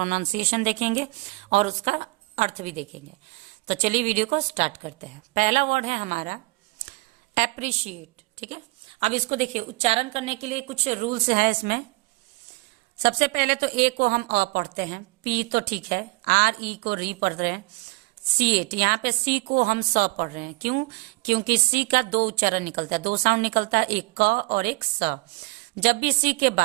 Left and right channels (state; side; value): quieter; left; 24.6 dB